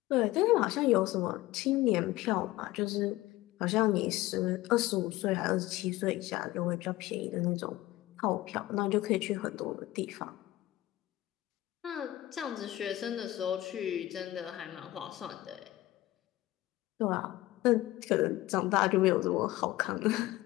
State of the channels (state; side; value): quieter; right; 16.9 dB